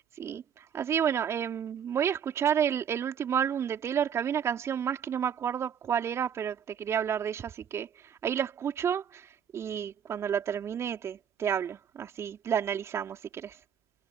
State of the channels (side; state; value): left; quieter; 8.2 dB